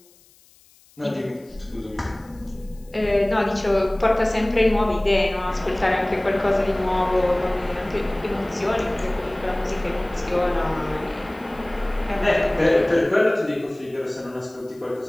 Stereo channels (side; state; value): left; noise; hiss, 29 dB below the sound